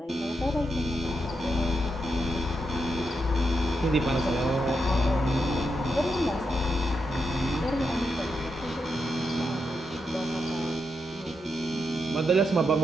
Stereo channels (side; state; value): both; normal; correlation 0.84